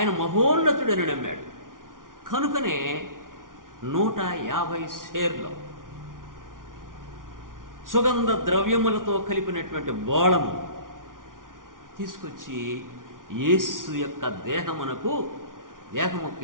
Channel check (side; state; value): left; late; 0.89 ms